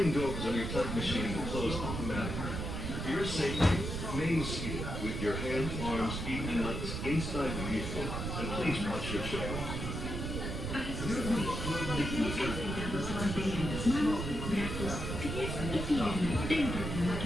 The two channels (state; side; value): noise; right; rumble, 4 dB below the sound